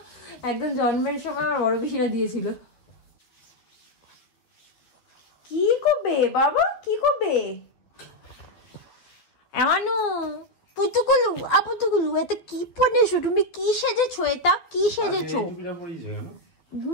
একদম জন্মের সময় আমার বড় পিসিরা দিয়েছিল। কি করবে বাবা, কি করবে? এমানু পুতুকুলু, আপুতুকুলু, এটা কি পরেছো তুমি? কি সেজেছো? এটা কি সেজেছো?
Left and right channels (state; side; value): late; right; 12 ms